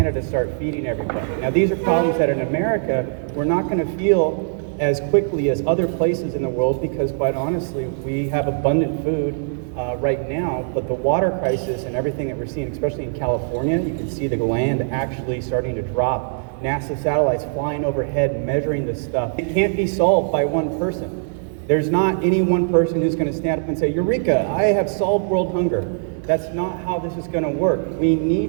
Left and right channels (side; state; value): left; silent; digital silence